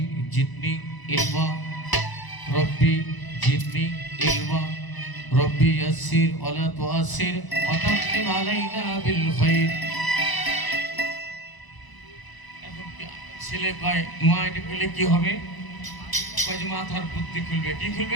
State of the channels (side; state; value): right; late; 1.0 ms